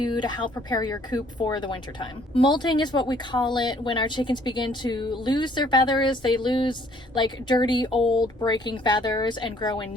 to help prepare your coop for the winter time. Molting is what we call it when our chickens begin to lose their feathers. They lose like dirty, old, breaking feathers and grow in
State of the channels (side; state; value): both; normal; correlation 0.61